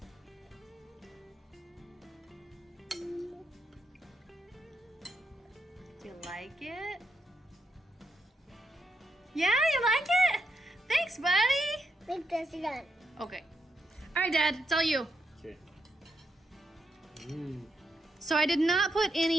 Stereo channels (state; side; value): normal; both; correlation 0.81